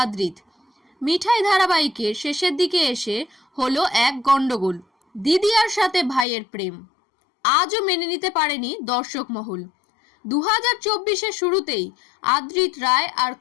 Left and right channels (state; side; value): drops out; right; at 6.2 s